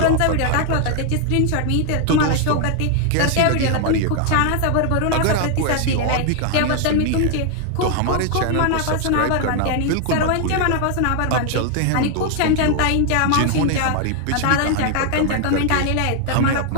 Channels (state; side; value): different; both; correlation 0.00